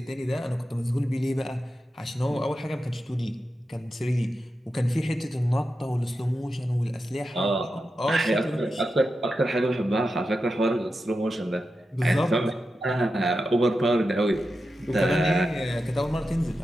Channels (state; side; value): normal; both; correlation 0.90